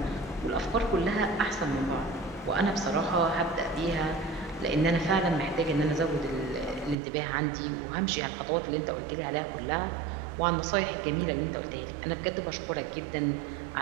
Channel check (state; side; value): drops out; left; at 7.0 s